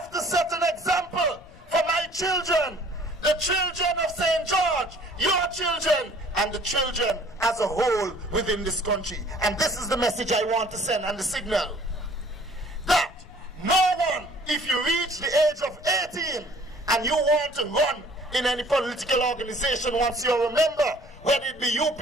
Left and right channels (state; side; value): noise; left; rumble, 23 dB below the sound